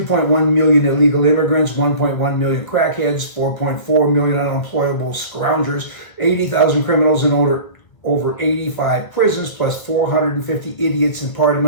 million illegal immigrants, 1.1 million crackheads, 4.4 million unemployable scroungers, 80,000 criminals in over 85 prisons, plus 450 idiots in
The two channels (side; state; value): right; late; 1.5 ms